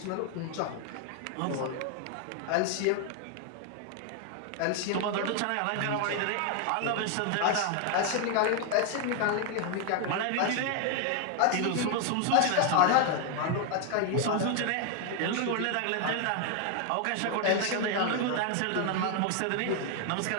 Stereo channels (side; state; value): both; different; correlation 0.00